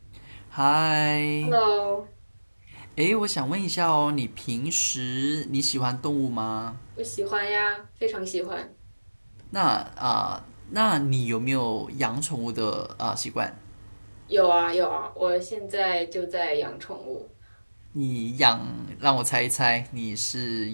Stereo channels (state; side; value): inverted; both; correlation -1.00